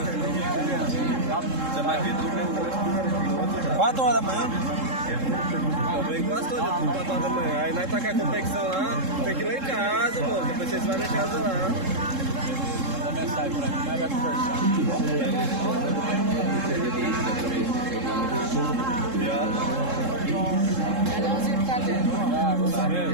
Você vai vir do 4 horas da manhã? Eu venho quase todo dia, 4 horas da manhã. Aí nós tá com a competição lá, tem que ir lá em casa, pô. Depois vocês vão em casa lá. Manda mensagem pra mim, nós vai conversar.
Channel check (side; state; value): left; late; 3.7 ms